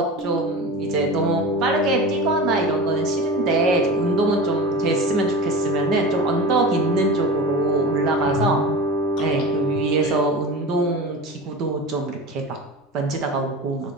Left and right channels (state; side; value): normal; both; correlation 0.31